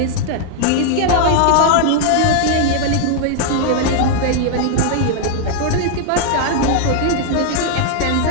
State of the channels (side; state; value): both; different; correlation 0.00